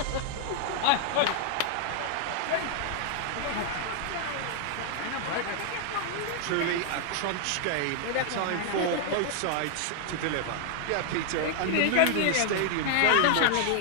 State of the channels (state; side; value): different; both; correlation 0.00